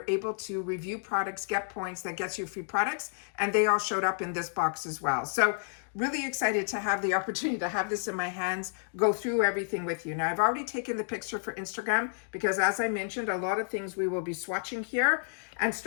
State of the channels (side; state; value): right; silent; digital silence